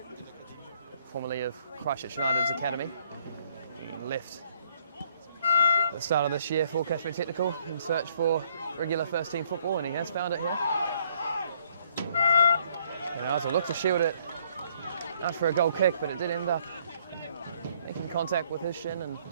formerly of Christchurch United's academy. He left at the start of this year for Cashmere Technical in search for regular first team football, and he has found it here. And Arthur looked to shield it out for a goal kick, but it did end up making contact with his shin and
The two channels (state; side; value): inverted; both; correlation -0.66